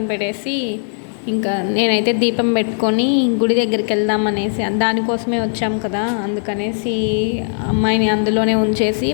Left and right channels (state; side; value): silent; right; digital silence